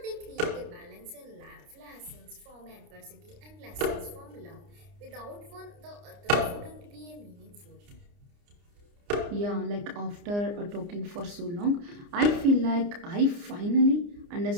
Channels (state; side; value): late; left; 29 ms